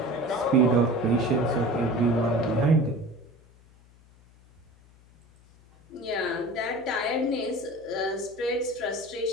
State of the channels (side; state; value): left; noise; hum, 27 dB below the sound